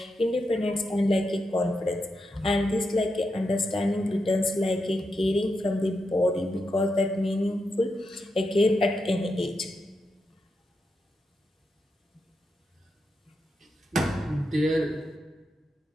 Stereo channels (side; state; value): both; normal; correlation 0.86